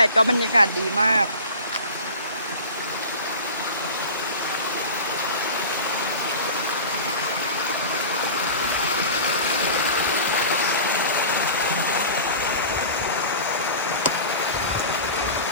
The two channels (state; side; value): inverted; both; correlation -0.37